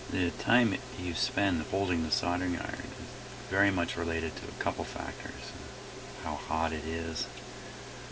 The time you spend holding the soldering iron is very much related to a couple factors. How hot it is,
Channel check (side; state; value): both; identical; correlation 1.00